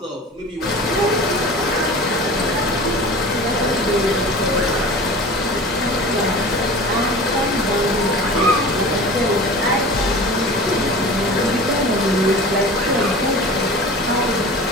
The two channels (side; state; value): both; normal; correlation 0.37